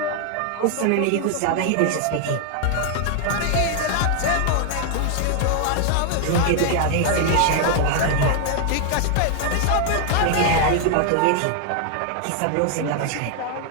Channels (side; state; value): both; different; correlation 0.00